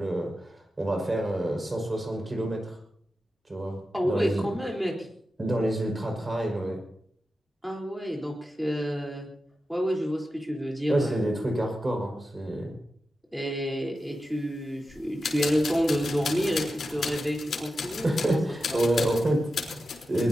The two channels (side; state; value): both; normal; correlation 0.91